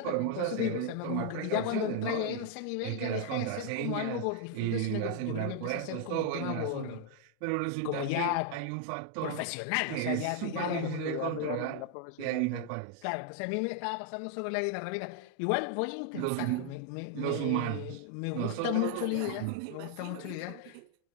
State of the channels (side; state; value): both; different; correlation 0.00